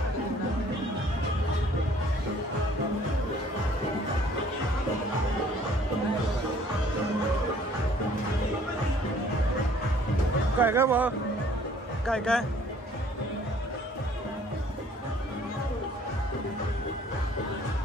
काय काय भाऊ काय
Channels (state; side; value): normal; both; correlation 0.57